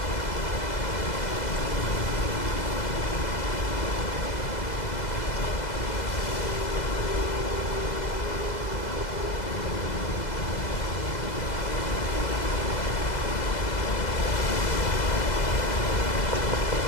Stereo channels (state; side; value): late; right; 2.0 ms